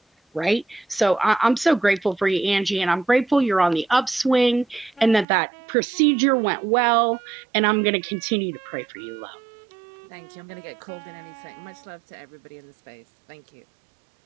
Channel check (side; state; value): left; drops out; at 5.2 s